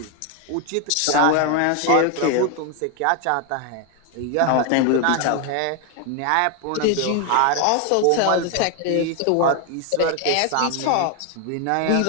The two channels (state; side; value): different; both; correlation 0.01